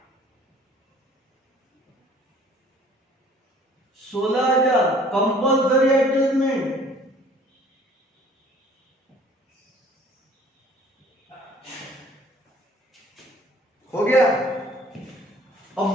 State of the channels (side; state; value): both; normal; correlation 0.53